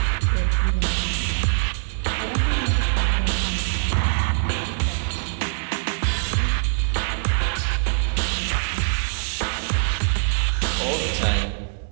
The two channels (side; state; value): left; silent; digital silence